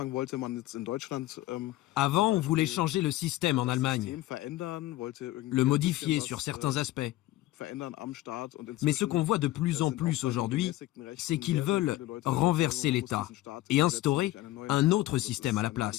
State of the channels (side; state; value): right; quieter; 16.3 dB